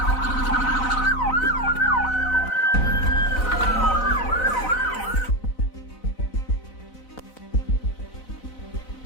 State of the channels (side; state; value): right; late; 4.0 ms